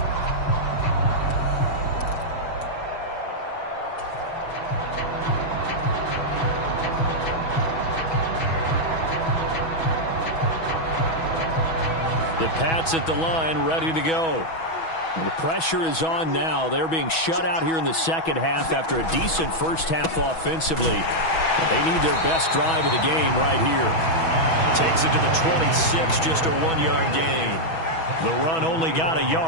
The Pats at the line, ready to go. And the pressure is on now. They're being shut out here in the second half after a decent first half offensively. But they need their best drive of the game right here. Takes it to the 26, just a 1-yard gain. The run only got a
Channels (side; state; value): right; late; 6.1 ms